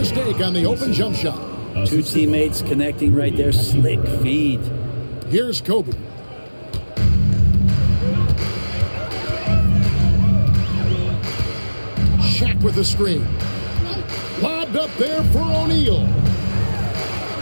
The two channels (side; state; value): both; inverted; correlation -1.00